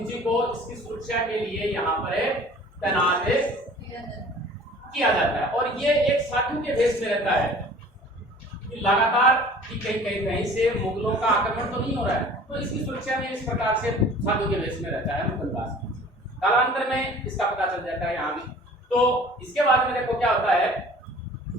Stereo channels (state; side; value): normal; both; correlation 0.47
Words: को इसकी सुरक्षा के लिए यहाँ पर तैनात किया जाता है, और ये एक साधु के भेष में रहता है कि लगातार कि कहीं से मुगलों का आक्रमण तो नहीं हो रहा है, तो इसकी सुरक्षा में इस प्रकार से साधु के भेष में रहता है मुकुंद दास। कालांतर में इसका पता चल जाता है यहाँ भी। तो इसके बाद में देखो क्या होता है